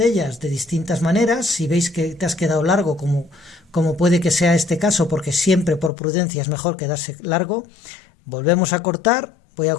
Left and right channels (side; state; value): right; drops out; at 5.9 s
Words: de distintas maneras. Si veis que te has quedado largo, como puede que sea este caso, porque siempre por prudencia es mejor quedarse largo, volvemos a cortar.